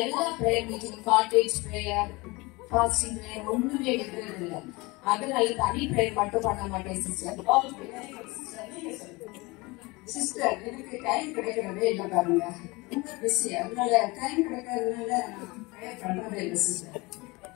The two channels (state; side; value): quieter; right; 24.0 dB